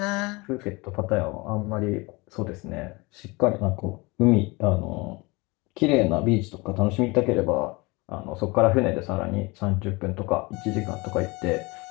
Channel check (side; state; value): right; quieter; 25.1 dB